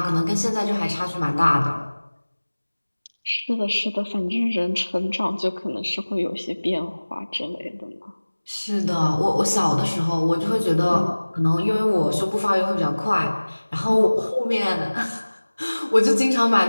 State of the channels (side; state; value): both; inverted; correlation -1.00